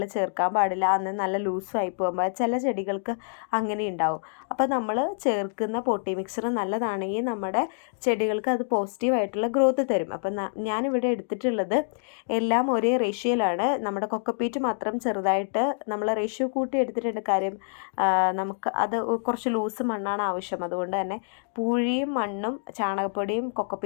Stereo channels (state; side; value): silent; right; digital silence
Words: ചേർക്കാൻ പാടില്ല. അന്ന് നല്ല ലൂസായി പോകുമ്പോൾ ചില ചെടികൾക്ക് അങ്ങനെ ഉണ്ടാവും. അപ്പോൾ നമ്മൾ ചേർക്കുന്ന പോട്ടിംഗ് മിക്സ്ചർ നല്ലതാണെങ്കിൽ നമ്മുടെ ചെടികൾക്ക് അത് പോസിറ്റീവായിട്ടുള്ള ഗ്രോത്ത് തരും. അപ്പം ഞാനിവിടെ എടുത്തിട്ടുള്ളത് എല്ലാം ഒരേ റേഷ്യോയിലാണ്. നമ്മുടെ കൊക്കോപ്പീറ്റ് മാത്രം ചെറുതായിട്ട് നമ്മൾ റേഷ്യോ കൂട്ടി എടുത്തിട്ടുണ്ട്. കാര്യം നമുക്ക് അത് കുറച്ച് ലൂസ് മണ്ണാണ് ആവശ്യം. അതുകൊണ്ട് തന്നെ പൂഴിയും മണ്ണും ചാണകപ്പൊടിയും